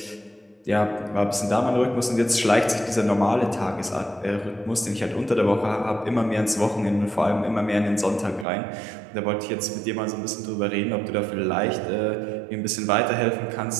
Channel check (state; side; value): drops out; left; at 8.5 s